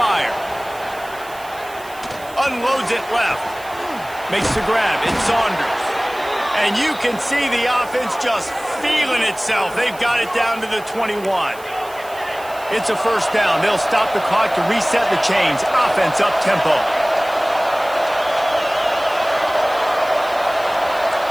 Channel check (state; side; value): noise; right; hiss, 20 dB below the sound